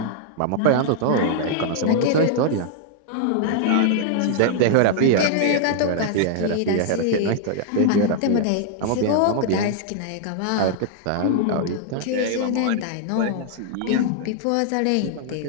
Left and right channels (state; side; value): different; both; correlation -0.01